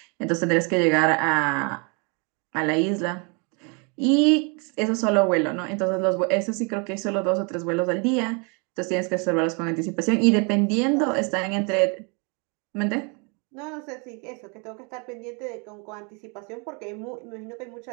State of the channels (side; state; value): left; quieter; 33.8 dB